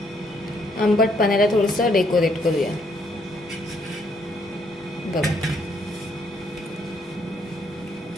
आंबट पाण्याला थोडंसं डेकोरेट करूया. बघा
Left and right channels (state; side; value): normal; both; correlation 0.70